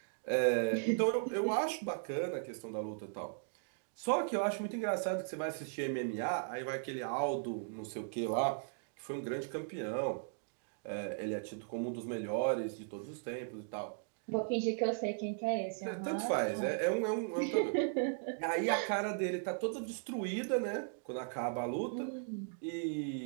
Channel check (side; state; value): left; silent; digital silence